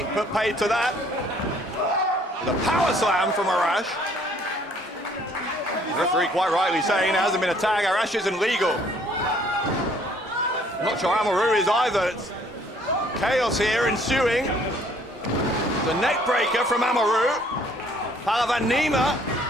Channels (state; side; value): normal; both; correlation 0.60